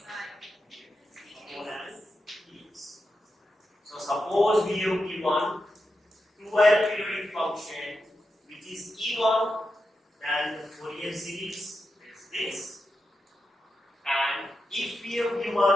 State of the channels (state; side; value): normal; both; correlation 0.88